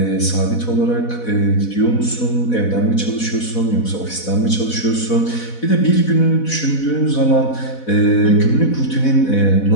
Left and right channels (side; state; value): right; late; 4.1 ms